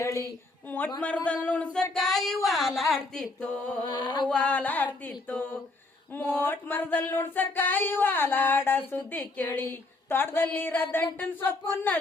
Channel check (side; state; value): right; quieter; 3.2 dB